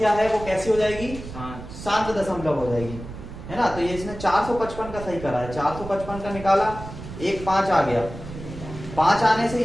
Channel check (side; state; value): right; noise; rumble, 12 dB below the sound